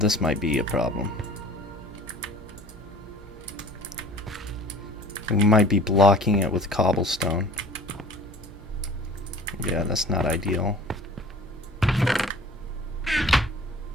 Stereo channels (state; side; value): normal; both; correlation 0.46